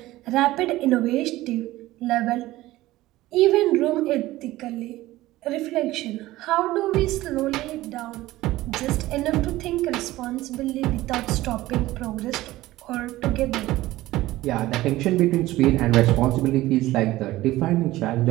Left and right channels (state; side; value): quieter; left; 17.0 dB